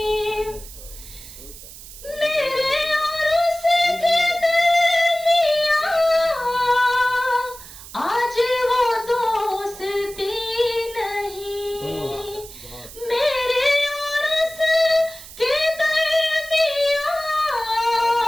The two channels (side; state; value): right; noise; hiss, 16 dB below the sound